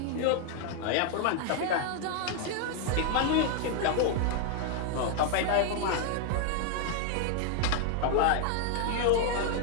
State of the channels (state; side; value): different; both; correlation 0.00